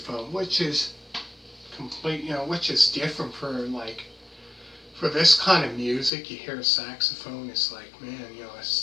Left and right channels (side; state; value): right; drops out; at 6.1 s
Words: which is which is different for this kind of music. You hear a saxophone, it's like, man,